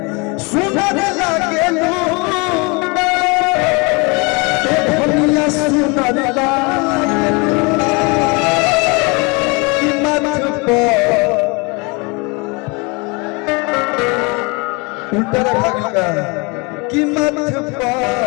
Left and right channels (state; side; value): quieter; right; 29.0 dB